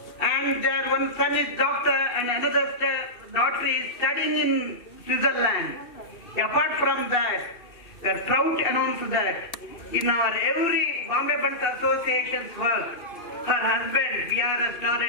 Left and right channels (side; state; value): right; late; 2.6 ms